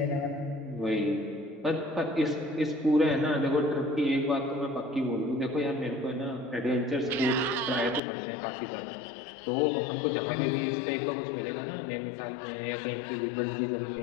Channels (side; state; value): right; drops out; at 8.0 s